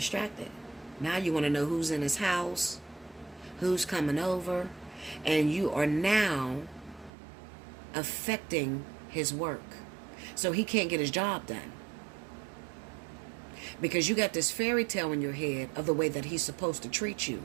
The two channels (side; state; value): left; drops out; at 7.1 s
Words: Now you want to know who's in his house, who's coming over, and you are now affecting his work. So he can't get his job done. Because you got this fairy tale in your head of the way that he's supposed to treat